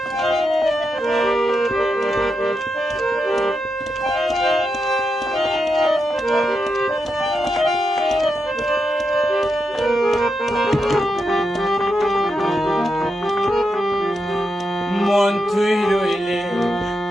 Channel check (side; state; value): both; normal; correlation 0.85